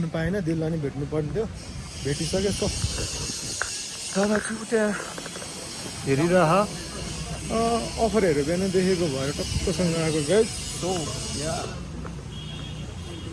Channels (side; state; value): both; identical; correlation 1.00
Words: पाएन दिललाई नै भेट्नु पर्ने थियो भेटिसक्यो सो दादा चाहिँ त्यहाँ हेरिरह अफरहरू बिहान देखेको भएर टक्कसँग आएको गाइस सो या